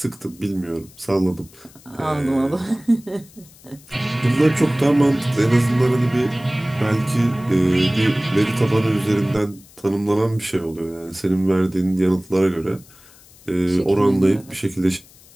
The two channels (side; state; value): left; noise; hiss, 25 dB below the sound